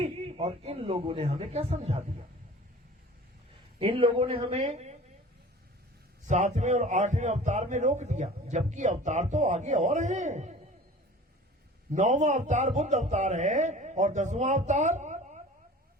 और इन लोगों ने हमें क्या समझा दिया। इन लोगों ने हमें 7वें और 8वें अवतार में रोक दिया, जबकि अवतार तो आगे और हैं। 9वां अवतार बुद्ध अवतार है, और 10वां अवतार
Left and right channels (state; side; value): normal; both; correlation 0.42